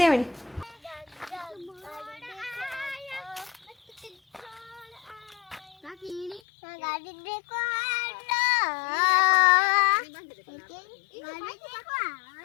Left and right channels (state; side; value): drops out; right; at 6.4 s